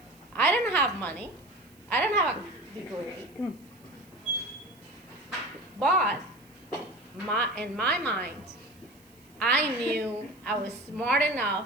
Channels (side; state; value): right; noise; hiss, 29 dB below the sound